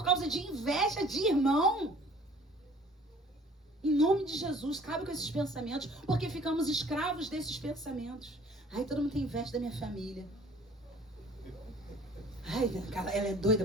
causa de inveja de irmão? Em nome de Jesus, cabe com esses pensamentos, porque ficamos escravos desses pensamentos. Ai, todo mundo tem inveja da minha família. Ai, ela é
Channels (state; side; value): normal; both; correlation 0.52